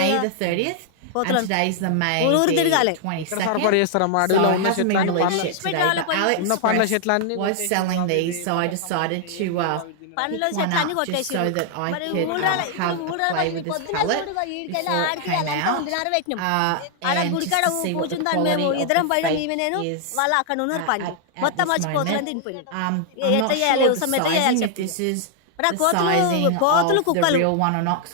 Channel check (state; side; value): different; both; correlation 0.00